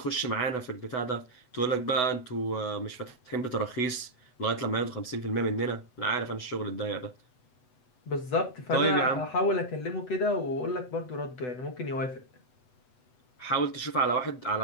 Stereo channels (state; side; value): late; right; 8.0 ms